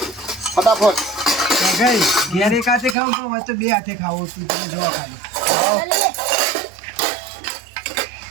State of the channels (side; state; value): left; drops out; at 3.0 s